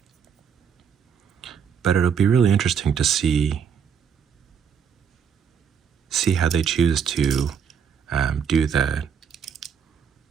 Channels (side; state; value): left; quieter; 7.3 dB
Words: But it'll be really interesting to see how they choose to do the